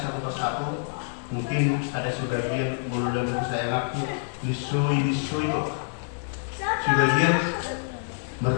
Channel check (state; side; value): silent; right; digital silence